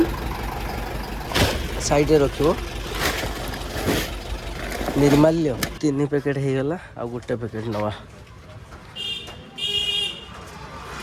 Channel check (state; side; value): identical; both; correlation 1.00